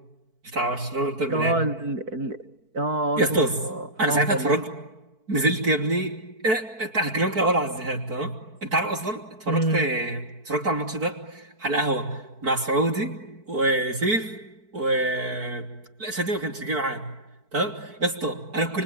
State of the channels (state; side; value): late; left; 4.5 ms